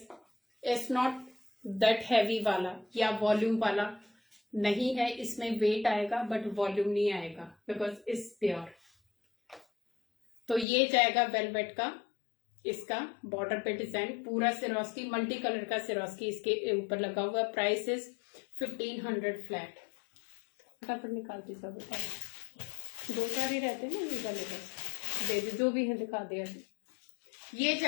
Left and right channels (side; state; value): right; drops out; at 10.7 s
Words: it's not that heavy वाला या वॉल्यूम वाला नहीं है, इसमें वेट आएगा बट वॉल्यूम नहीं आएगा बिकॉज इट्स प्योर। तो ये जाएगा वेलवेट का, इसका बॉर्डर पे डिजाइन पूरा सिरोस्की, मल्टी कलर का सिरोस्की इसके ऊपर लगा हुआ। Price is 1500 flat. फटाफट निकालती सब, दो चार ही रहते हैं ना ये वाले, बस दे दे जो भी है दिखा दे अभी। ये